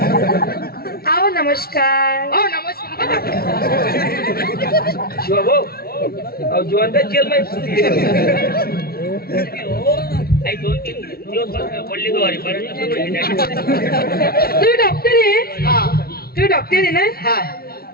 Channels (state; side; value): late; right; 0.44 ms